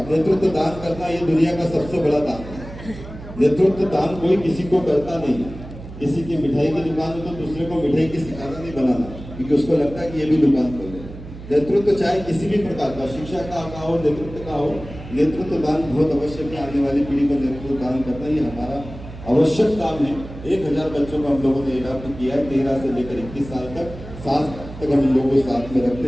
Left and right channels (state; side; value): noise; right; hum, 14 dB below the sound